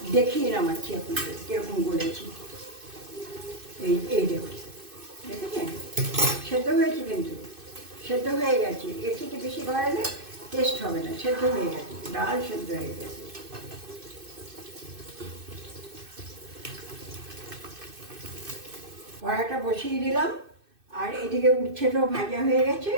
দেখিয়ে নামাচ্ছি আপনাদের কীরকম বলেছি। এই দেখুন, দেখেছেন সেদ্ধ হয়েছে, কিন্তু সেদ্ধ হয়ে গেছে। এর থেকে বেশি বাড়ালে টেস্ট হবে না, সেদ্ধ হয়ে গেছে, ডাল সেদ্ধ হয়ে গেছে। কড়াটা বসিয়ে দিলাম, আর এদিকে উচ্ছেটাও ভাজা হয়ে গেছে।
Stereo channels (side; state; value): left; late; 2.6 ms